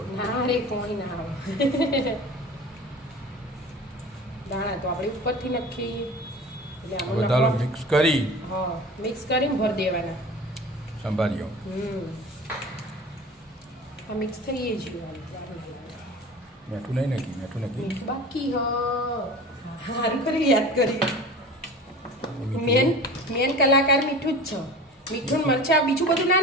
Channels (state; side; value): normal; both; correlation 0.37